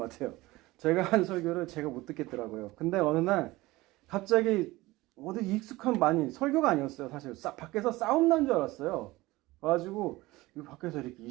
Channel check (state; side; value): quieter; left; 19.6 dB